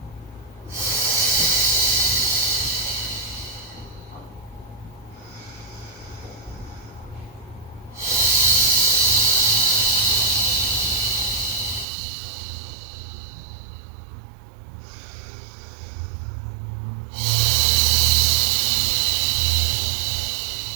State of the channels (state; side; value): drops out; left; at 11.9 s